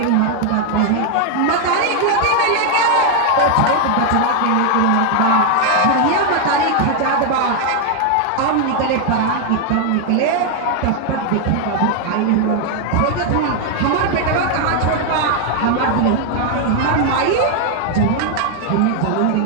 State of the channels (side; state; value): both; different; correlation 0.00